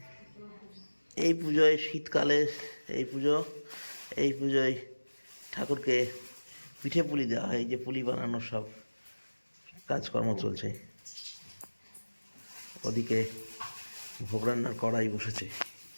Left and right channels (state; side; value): inverted; both; correlation -1.00